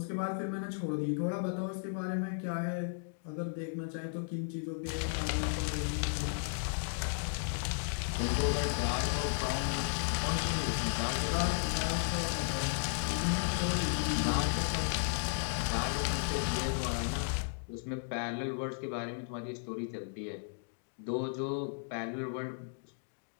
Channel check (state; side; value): silent; right; digital silence